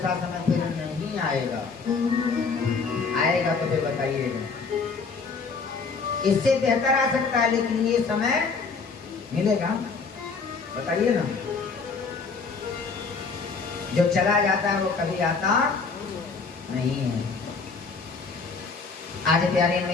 समय फिर नहीं आएगा। आएगा तो फिर बताइएगा। इससे बेहतर आ सकता है, लेकिन ये समय मिलेगा, बताइए ना। जो चला जाता है वो कभी आता नहीं है। आज प्यारी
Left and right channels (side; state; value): right; quieter; 4.8 dB